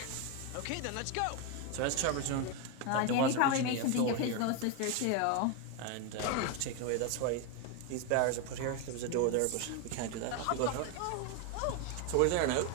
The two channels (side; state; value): both; different; correlation 0.01